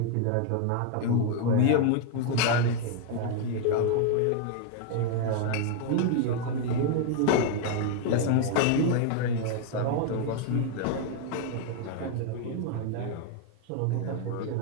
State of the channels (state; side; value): different; both; correlation 0.00